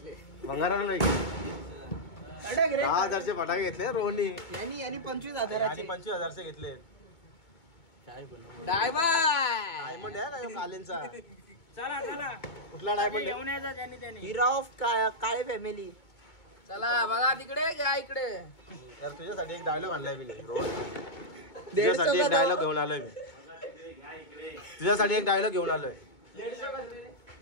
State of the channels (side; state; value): right; late; 2.2 ms